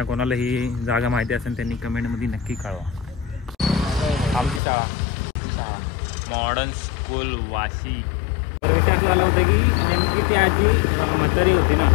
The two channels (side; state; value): right; drops out; at 4.6 s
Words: कोणाला ही जागा माहिती असेल त्यांनी कमेंटमध्ये नक्की कळवा. आमची शाळा मॉडर्न स्कूल वाशी. तर विषय असं झाला होता की नेमकी ती आजी म्हातारी होती ना,